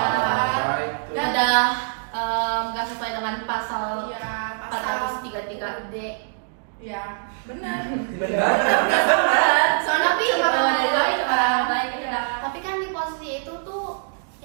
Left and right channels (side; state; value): left; silent; digital silence